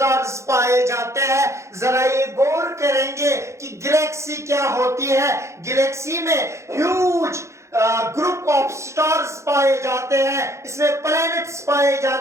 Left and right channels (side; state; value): left; late; 0.14 ms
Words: पाए जाते हैं। जरा ये गौर करेंगे कि गैलेक्सी क्या होती है। गैलेक्सी में ह्यूज ग्रुप ऑफ स्टार्स पाए जाते हैं, इसमें प्लैनेट्स पाए